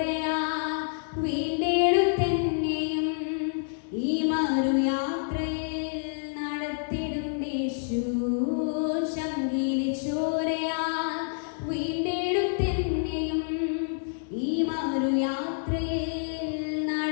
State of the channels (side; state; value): right; silent; digital silence